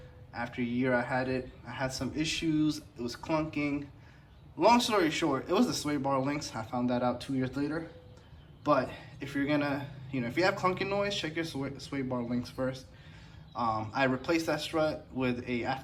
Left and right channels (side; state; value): both; identical; correlation 1.00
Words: After a year I had some issues. It was clunking. Long story short, it was the sway bar links. I found that out 2 years later. But if you're gonna, if you have clunky noise, check your sway bar links first. I replaced that strut with a